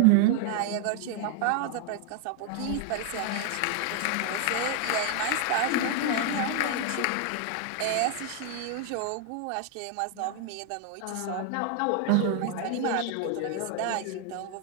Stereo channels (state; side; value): different; both; correlation 0.00